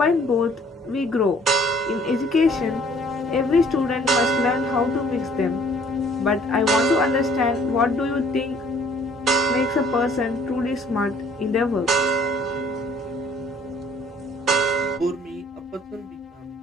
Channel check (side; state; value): both; normal; correlation 0.57